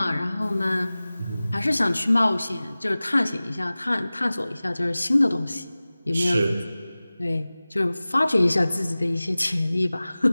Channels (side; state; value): both; inverted; correlation -0.98